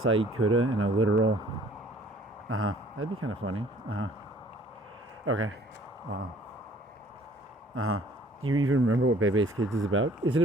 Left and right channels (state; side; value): normal; both; correlation 0.56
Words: Kuda and a literal. That'd be kind of funny. Okay. Wow. Do you even remember what Bebe's Kids is about? Is it